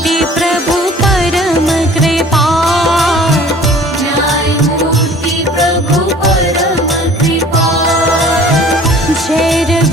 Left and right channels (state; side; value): normal; both; correlation 0.49